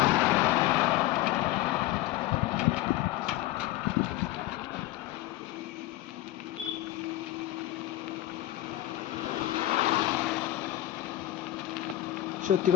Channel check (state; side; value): quieter; right; 15.4 dB